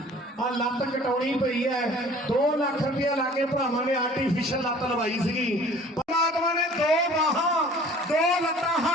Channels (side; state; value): both; normal; correlation 0.49